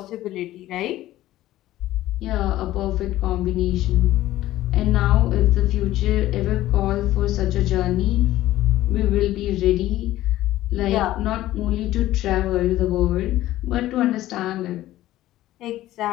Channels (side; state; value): right; quieter; 15.0 dB